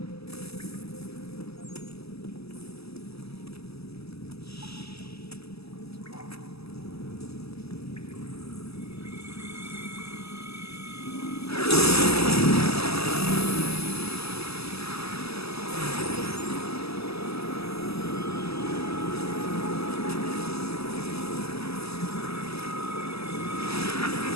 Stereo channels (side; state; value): right; late; 0.78 ms